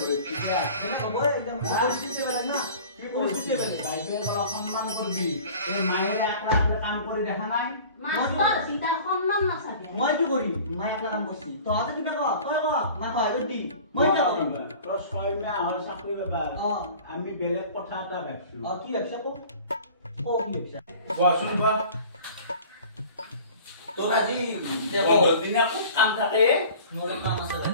হইছে সেটা হবে একদম পরিস্থিতি বেলেগ না কি পরিস্থিতি বেলেগ বাইরে বলা সম্মান করবি এই মায়ের একলা কাম করে দেখা নাই মাস্টার সীতার সম্মান না থাকে মই কি করি মাই একলা কাম করছি তো আতে কিনা কো তই কো মা কয় দি মই কি করি তো ছয় মাহ হয় চাকরি ব্যাপার আমি বেলেগ কথা এটা ভাবছো কি ব্যবসা কো ও কি ব্যবসা কোৱাচোন বা তোৰ আজি দেখো দিনে খুব কাম থাকে মোৰ কাম আছে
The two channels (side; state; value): both; inverted; correlation -0.44